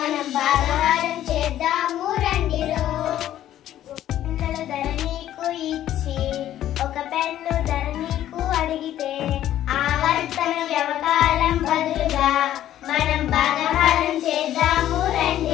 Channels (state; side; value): quieter; right; 12.3 dB